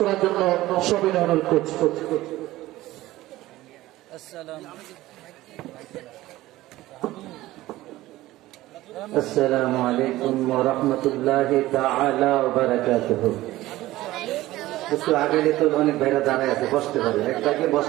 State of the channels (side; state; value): left; quieter; 16.8 dB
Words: জন্য সবিনয় অনুরোধ করছি। আসসালামু আলাইকুম ওয়া রাহমাতুল্লাহি তাআলা ওয়া বারাকাতুহু। একটু আগে তো অনেক ভাইরা দাঁড়ায় আছে, বসতে পারে। একটাকে